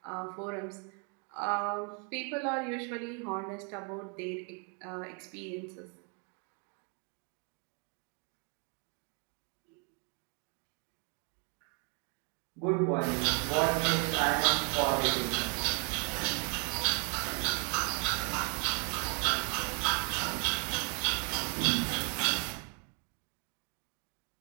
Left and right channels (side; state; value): left; quieter; 37.1 dB